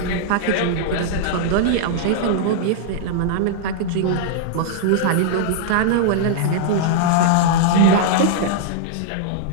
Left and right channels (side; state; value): both; different; correlation -0.01